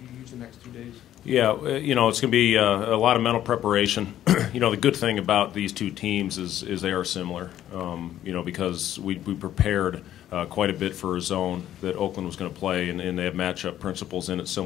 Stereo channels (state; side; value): quieter; right; 11.9 dB